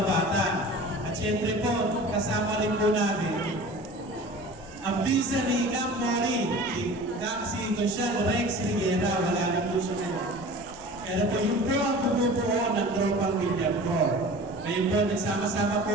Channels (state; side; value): noise; right; rumble, 25 dB below the sound